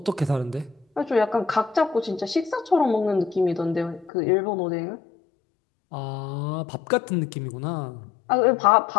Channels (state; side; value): drops out; right; at 4.1 s